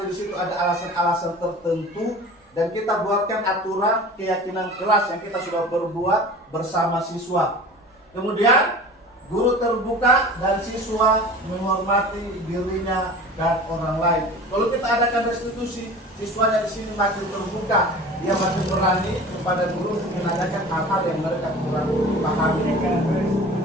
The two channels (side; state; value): both; normal; correlation 0.39